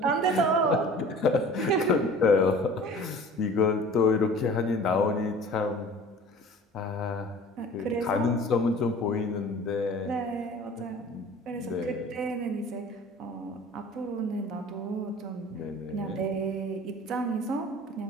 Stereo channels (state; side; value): normal; both; correlation 0.44